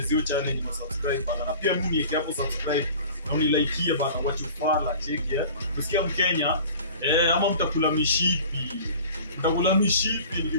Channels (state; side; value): inverted; both; correlation -0.42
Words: hiyo challenge na subscribe bana. Na pia mimi niweke hapo subscribe na unilike bana, wachufala. Cheki Usikia Mkenya ama mtakula mishipi.